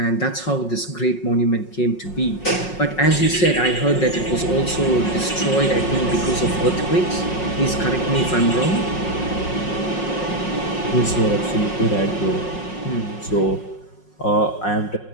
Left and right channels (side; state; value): right; late; 5.5 ms